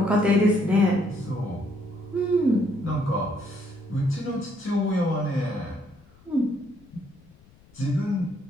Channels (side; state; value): left; noise; rumble, 27 dB below the sound